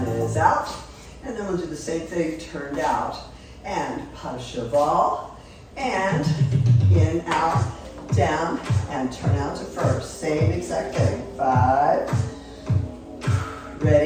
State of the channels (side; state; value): both; identical; correlation 1.00